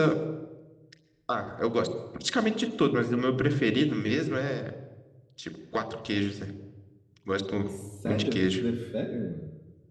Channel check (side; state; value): both; identical; correlation 1.00